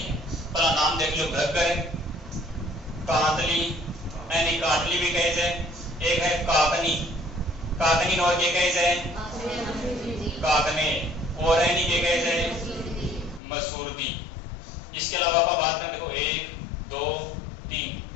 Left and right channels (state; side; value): drops out; right; at 13.4 s